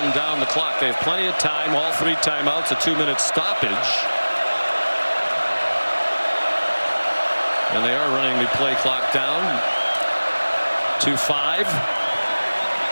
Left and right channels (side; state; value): both; inverted; correlation -1.00